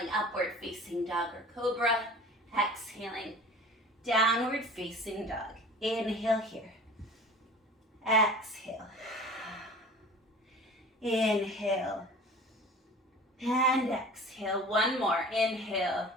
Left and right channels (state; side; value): normal; both; correlation 0.42